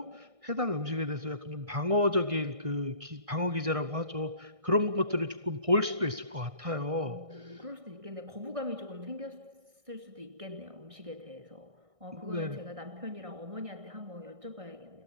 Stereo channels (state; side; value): late; left; 1.6 ms